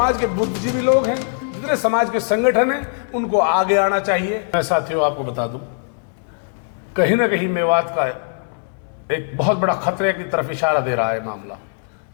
के बुद्धिजीवी लोग हैं, जितने समाज के संगठन हैं, उनको आगे आना चाहिए। मैं साथियों आपको बता दूं, कहीं ना कहीं मेवात का एक बहुत बड़ा खतरे की तरफ इशारा दे रहा है मामला।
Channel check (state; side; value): silent; right; digital silence